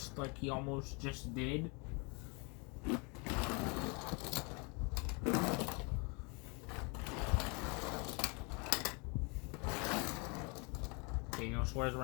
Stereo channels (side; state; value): right; quieter; 32.0 dB